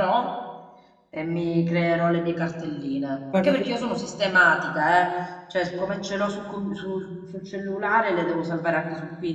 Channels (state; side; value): identical; both; correlation 1.00